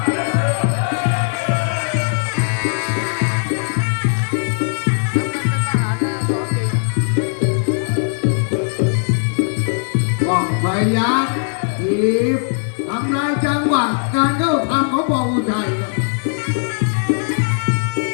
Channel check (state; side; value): silent; right; 67 dB below the other